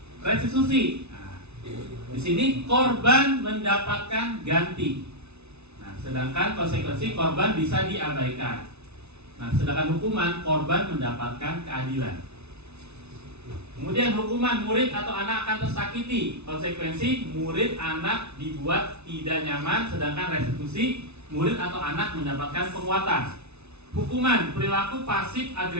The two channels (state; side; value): late; left; 0.81 ms